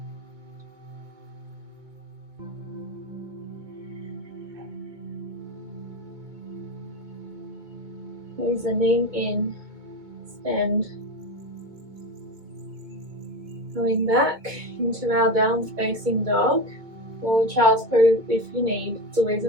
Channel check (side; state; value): left; late; 2.2 ms